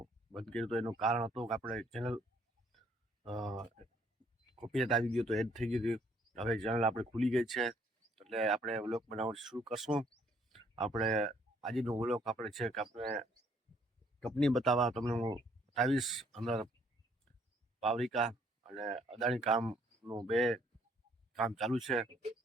બંધ કર્યું તો એનું કારણ હતું કે આપણે ચેનલ કોપીરાઇટ આવી ગયું તો એડ થઈ ગયું હતું. હવે ચેનલ આપણે ખુલી ગઈ છે એટલે આપણે વ્લોગ બનાવવાનું શરૂ કરશું. આપણે આજનો વ્લોગ આપણે છે કે આપણે કંપની બતાવવા તમને હું બતાવીશ. અંદર પાવરિકા અને અદાણી કામનું બે કામ ચાલુ છે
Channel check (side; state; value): both; normal; correlation 0.64